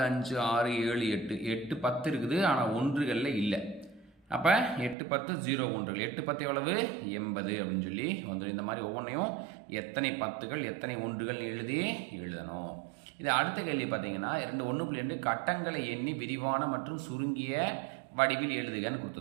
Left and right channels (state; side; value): drops out; left; at 5.0 s